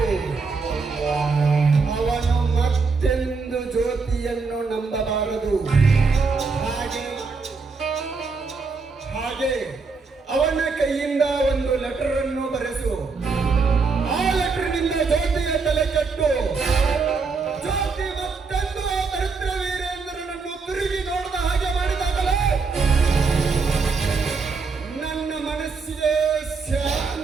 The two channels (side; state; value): left; quieter; 4.6 dB